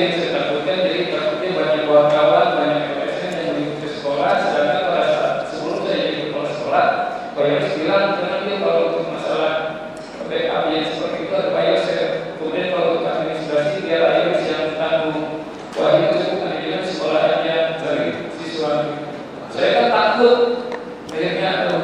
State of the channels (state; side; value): identical; both; correlation 1.00